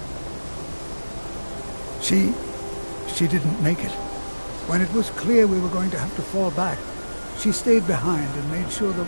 She didn't make it. When it was clear we were going to have to fall back, she stayed behind and made sure the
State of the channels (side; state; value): both; inverted; correlation -1.00